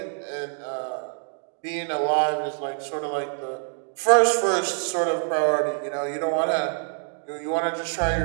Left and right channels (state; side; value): silent; left; 61 dB below the other